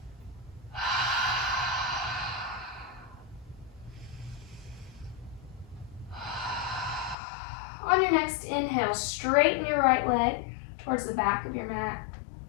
On your next inhale, straighten your right leg towards the back of your mat.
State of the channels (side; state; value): right; drops out; at 7.2 s